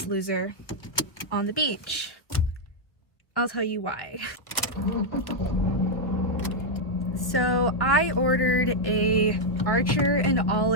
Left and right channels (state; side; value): late; right; 1.4 ms